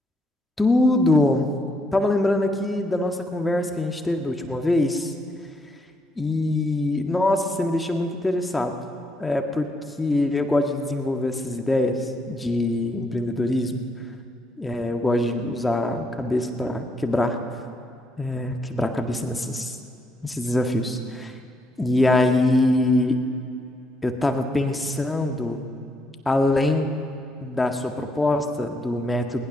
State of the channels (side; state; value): both; normal; correlation 0.75